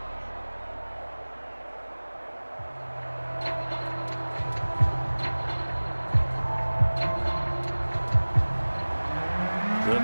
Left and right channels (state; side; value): inverted; both; correlation -1.00